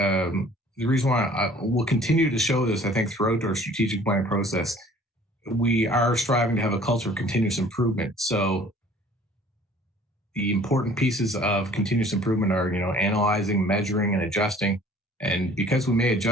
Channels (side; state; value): both; normal; correlation 0.52